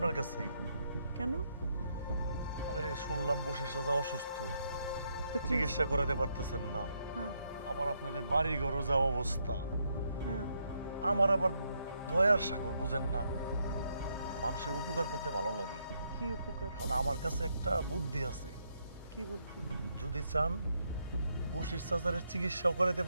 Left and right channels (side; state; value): both; inverted; correlation -0.77